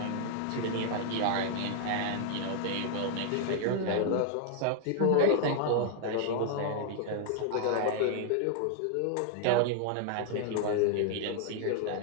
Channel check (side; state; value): both; different; correlation 0.00